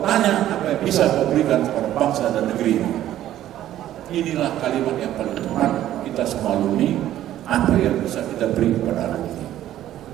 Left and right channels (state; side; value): quieter; left; 12.7 dB